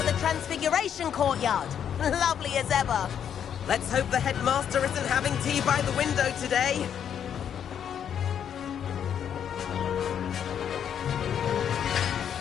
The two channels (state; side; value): quieter; right; 8.7 dB